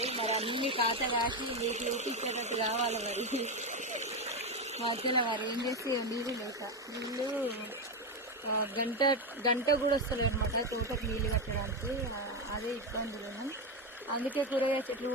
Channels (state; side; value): normal; both; correlation 0.12